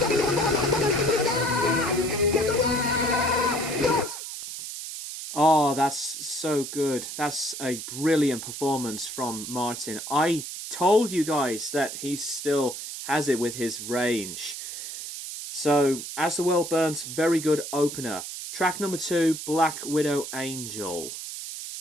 Oh, that's so good. That's a brilliant performance from Martin. I told you guys that he still has it with his range. So, As the World Burns, very good opener. Track number 2, Black Widow Angel.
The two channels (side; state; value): right; noise; hiss, 8 dB below the sound